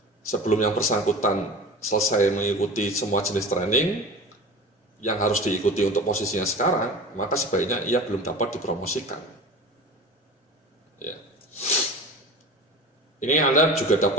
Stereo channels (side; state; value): both; normal; correlation 0.35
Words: Sebelum yang bersangkutan selesai mengikuti semua jenis training yang harus diikuti untuk posisinya sekarang, maka sebaiknya ia belum dapat dipromosikan. Ya. Ini Anda juga